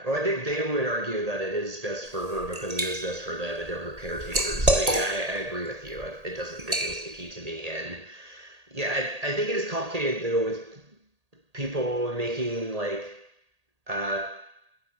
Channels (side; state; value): left; late; 1.8 ms